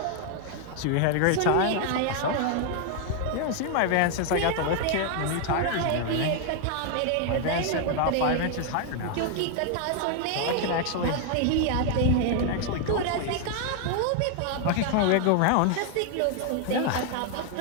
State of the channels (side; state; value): both; different; correlation 0.00